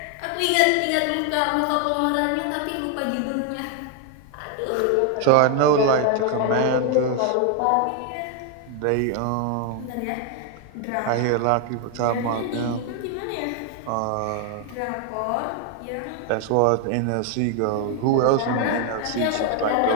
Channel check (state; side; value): different; both; correlation 0.00